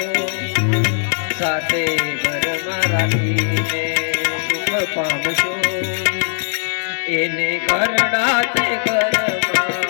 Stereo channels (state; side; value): silent; right; digital silence